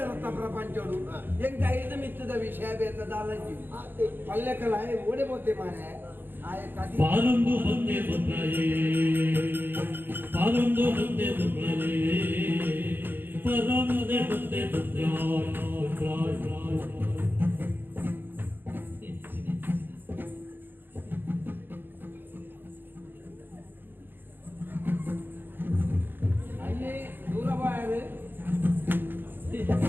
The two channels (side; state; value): left; late; 0.097 ms